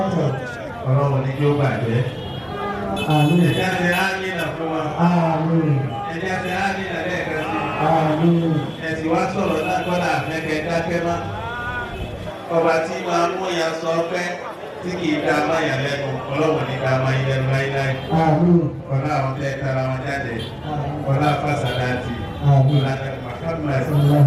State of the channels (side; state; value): both; identical; correlation 1.00